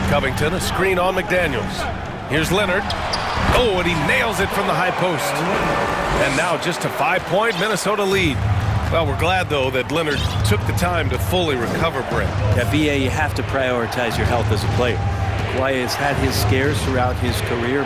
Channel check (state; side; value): identical; both; correlation 1.00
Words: Covington, a screen on McDaniels. Here's Leonard. Oh, and he nails it from the high post. And now just a 5-point Minnesota lead. Well, we're glad, though, that Leonard took the time to fully recover, Brent. Yeah, VA, you have to prioritize your health as a player. Kawhi has had his scares throughout his